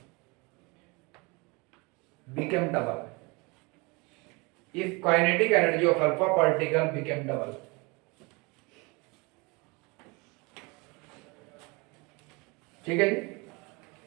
became double. If kinetic energy of alpha particle became double. ठीक है जी.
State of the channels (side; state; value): left; quieter; 27.5 dB